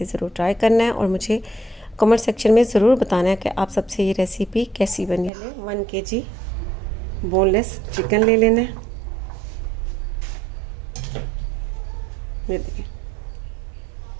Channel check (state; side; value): drops out; left; at 5.3 s